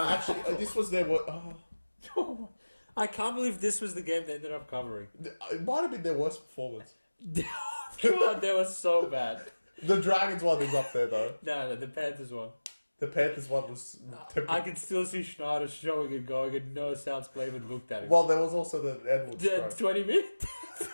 actually, this was their... Oh. I can't believe this was the game they ended up covering. It might have been their worst performance. God, they were so bad. The Dragons one is up there, though. No, the Panthers one. The Panthers one was... I can still see Schneider showing and going, and no Souths player even looked at him. Well, there was also the Edwards The 20 minutes?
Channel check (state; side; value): inverted; both; correlation -1.00